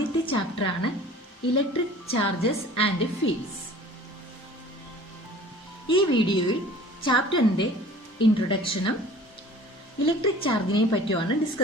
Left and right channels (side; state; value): both; normal; correlation 0.46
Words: ചാപ്റ്ററാണ് ഇലക്ട്രിക് ചാർജസ് ആൻഡ് ഫീൽഡ്സ്. ഈ വീഡിയോയിൽ ചാപ്റ്ററിന്റെ ഇൻട്രൊഡക്ഷനും ഇലക്ട്രിക് ചാർജിനെ പറ്റിയാണ്